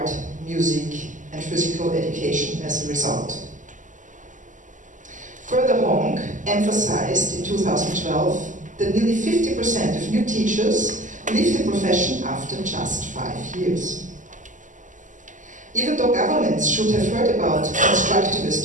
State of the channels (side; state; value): left; late; 0.37 ms